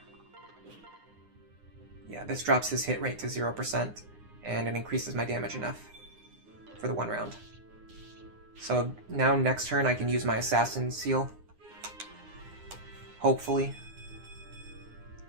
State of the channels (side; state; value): left; late; 9.7 ms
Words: Yeah, this drops his hit rate to 0%, and it increases my damage enough for the 1 round. So now next turn I can use my Assassin Seal. Hopefully.